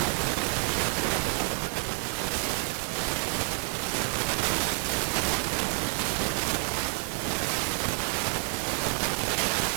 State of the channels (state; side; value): quieter; left; 36.7 dB